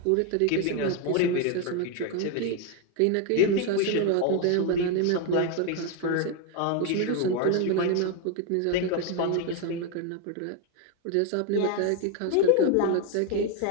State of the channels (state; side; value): different; both; correlation 0.01